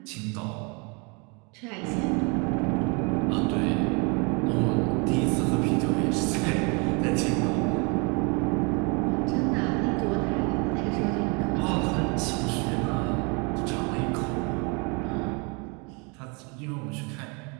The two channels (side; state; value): left; quieter; 32.0 dB